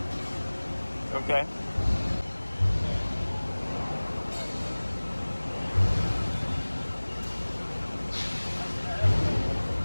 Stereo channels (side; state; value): both; inverted; correlation -1.00